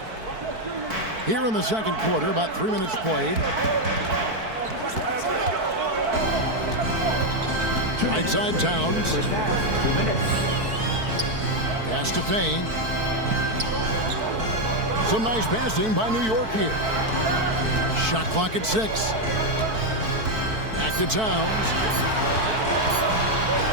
Here in the 2nd quarter, about 3 minutes played. Right side Towns. 2 minutes. Pass to Payne. Some nice passing by New York here. Shot clock at 6. Back to Towns.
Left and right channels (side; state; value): left; late; 4.5 ms